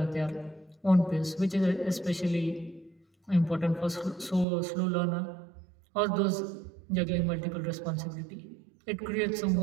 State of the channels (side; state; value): left; drops out; at 4.5 s